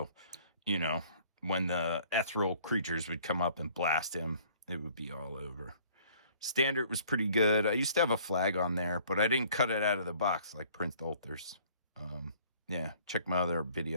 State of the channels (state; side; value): inverted; both; correlation -0.55